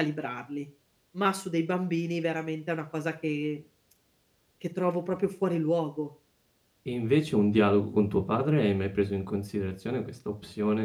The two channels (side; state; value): both; identical; correlation 1.00